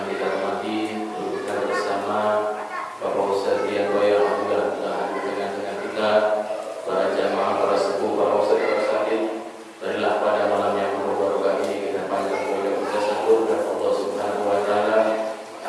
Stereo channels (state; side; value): identical; both; correlation 1.00